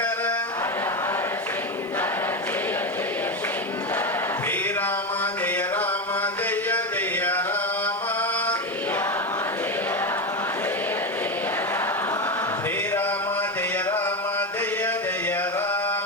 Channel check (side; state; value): right; noise; hiss, 29 dB below the sound